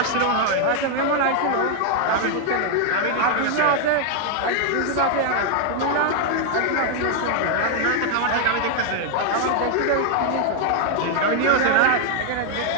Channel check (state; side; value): different; both; correlation 0.00